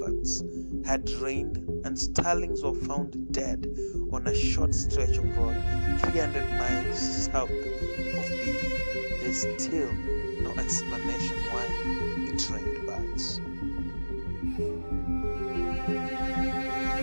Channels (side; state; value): both; inverted; correlation -1.00